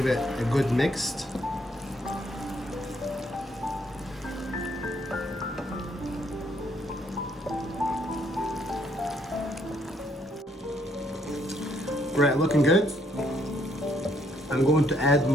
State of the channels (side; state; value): both; normal; correlation 0.69